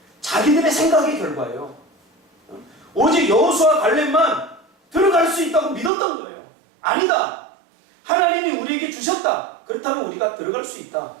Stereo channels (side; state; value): left; drops out; at 5.9 s